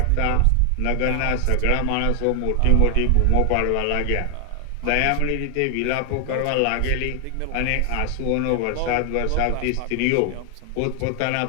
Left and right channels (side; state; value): both; different; correlation 0.00